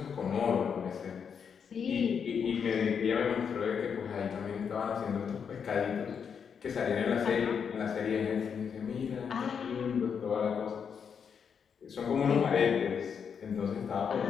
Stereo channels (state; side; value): quieter; right; 6.9 dB